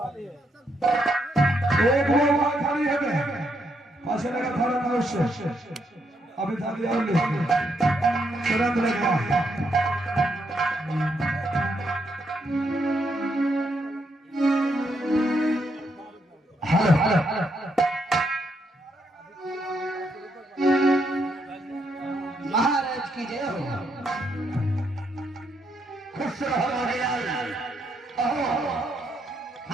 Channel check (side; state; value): both; normal; correlation 0.77